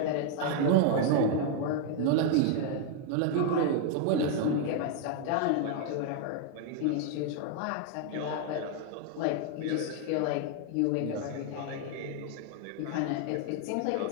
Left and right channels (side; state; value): both; different; correlation 0.00